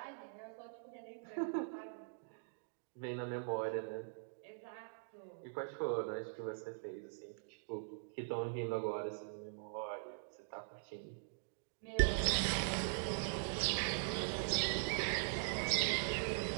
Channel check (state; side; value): silent; left; digital silence